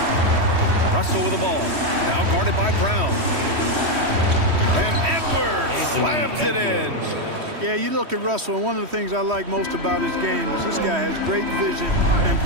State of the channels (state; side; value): late; left; 3.1 ms